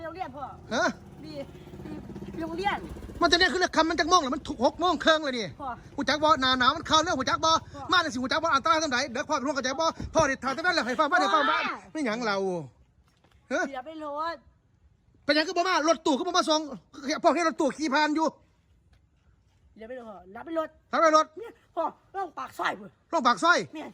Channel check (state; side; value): identical; both; correlation 1.00